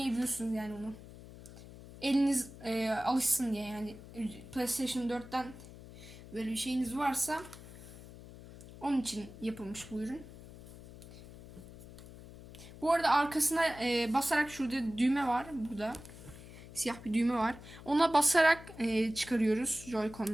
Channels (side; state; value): left; noise; hum, 16 dB below the sound